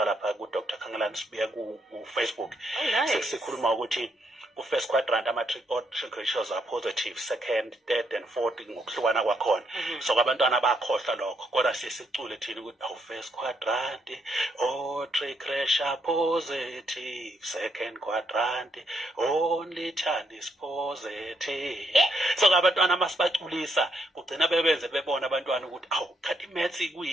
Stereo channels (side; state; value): both; normal; correlation 0.75